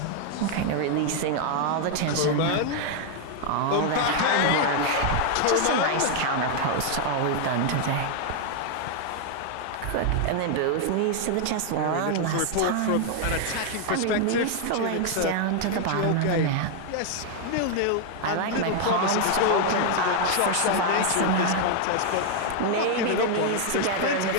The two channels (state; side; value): different; both; correlation 0.00